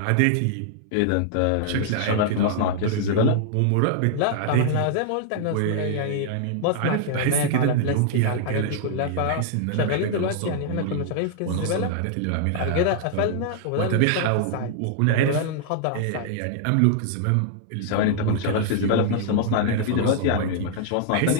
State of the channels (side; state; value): both; different; correlation -0.01